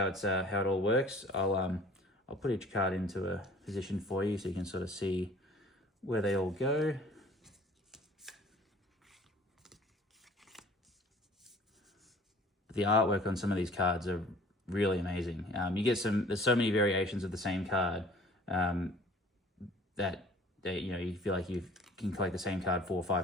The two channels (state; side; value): normal; both; correlation 0.49